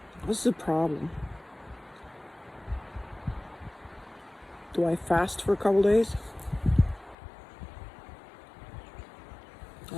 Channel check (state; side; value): drops out; right; at 7.2 s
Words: what's the problem? Do I fast for a couple days?